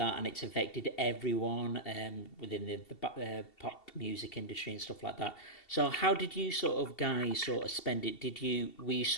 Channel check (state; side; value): late; right; 2.7 ms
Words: and it's affected everyone within the pop music industry and stuff like that. So how did you guys spend it? Were you